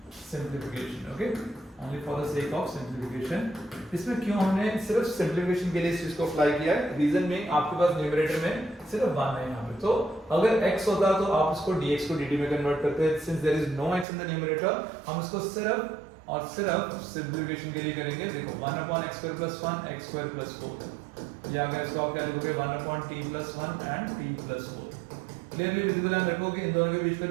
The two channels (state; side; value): drops out; left; at 14.1 s